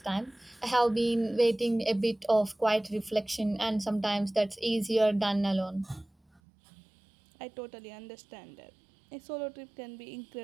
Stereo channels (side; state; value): left; drops out; at 6.4 s